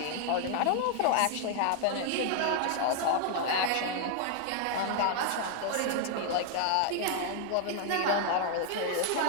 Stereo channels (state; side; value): different; both; correlation 0.00